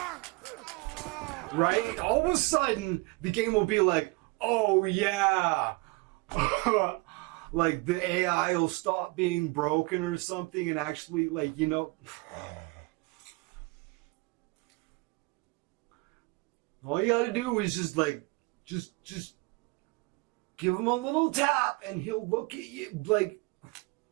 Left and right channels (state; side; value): quieter; left; 26.0 dB